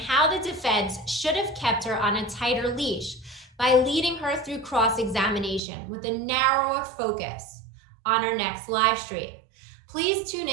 the defense should have kept her on a tighter leash by leading her through cross-examination with a narrower focus on our next live stream. Please tune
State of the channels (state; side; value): drops out; left; at 5.6 s